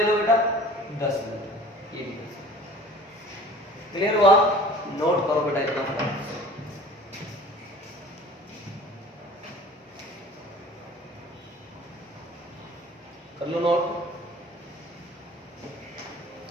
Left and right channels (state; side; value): normal; both; correlation 0.44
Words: लो बेटा 10 न्यूटन। ये क्लियर हुआ? नोट करो बेटा इतना। कर लो नोट।